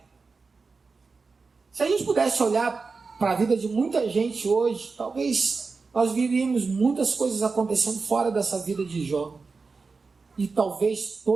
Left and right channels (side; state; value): left; quieter; 4.4 dB